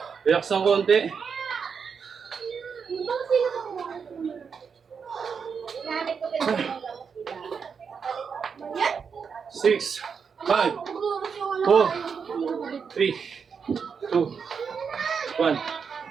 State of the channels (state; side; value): quieter; left; 6.2 dB